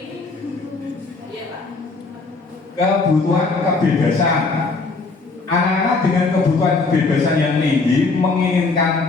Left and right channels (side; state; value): right; quieter; 3.9 dB